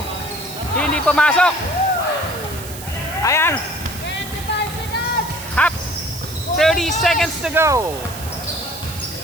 Hindi pumasok. Ayan. 25 seconds. Hap. 30 seconds to go.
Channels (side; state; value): right; noise; hiss, 13 dB below the sound